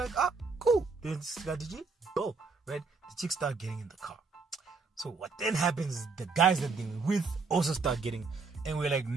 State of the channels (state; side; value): quieter; left; 4.5 dB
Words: cool. Then Gigi, go, right? The chicks start getting in the car. So what then happens is the guys that they were with also start getting, and we're like,